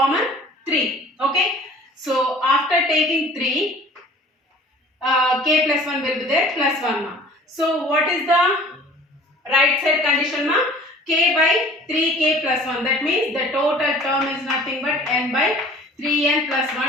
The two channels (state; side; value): normal; both; correlation 0.48